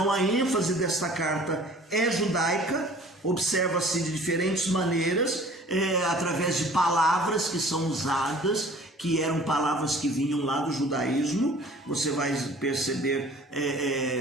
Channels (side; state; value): both; normal; correlation 0.49